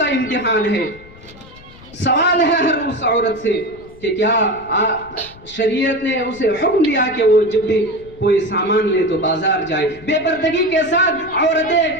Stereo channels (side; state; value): left; noise; rumble, 22 dB below the sound